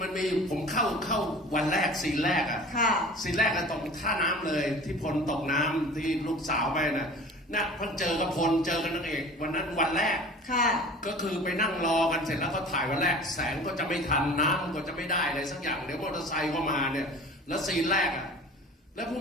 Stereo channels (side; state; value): both; normal; correlation 0.41